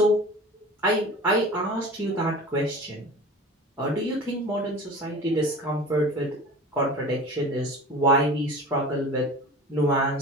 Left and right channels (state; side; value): normal; both; correlation 0.37